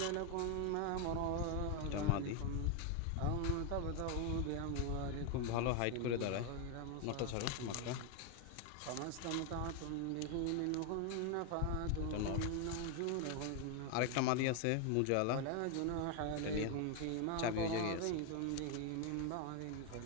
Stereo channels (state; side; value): different; both; correlation 0.01